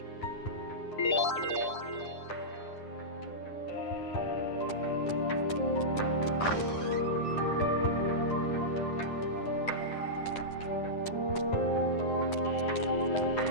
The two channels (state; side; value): late; right; 9.9 ms